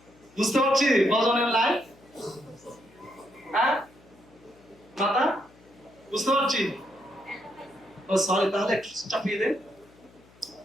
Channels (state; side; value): noise; left; hum, 27 dB below the sound